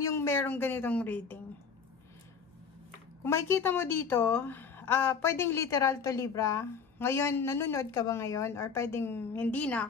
merong ganitong reading. Kung makikita mo dito, pwedeng literal to Libra. Ngayon, nanonood ka ba ngayon? Or pwedeng hindi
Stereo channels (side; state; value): right; quieter; 6.0 dB